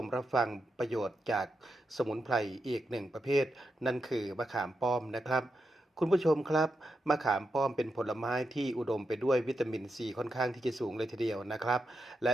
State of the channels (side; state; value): both; normal; correlation 0.86